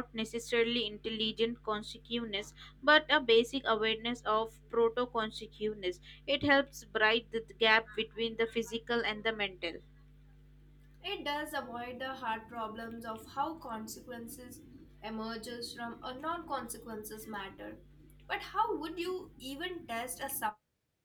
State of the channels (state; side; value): identical; both; correlation 1.00